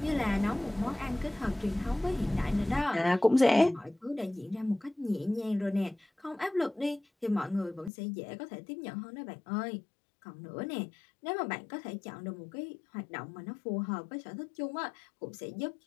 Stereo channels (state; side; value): drops out; right; at 7.9 s